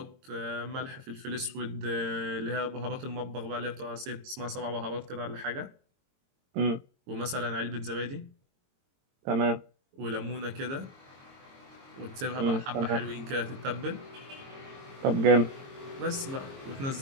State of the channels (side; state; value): left; late; 22 ms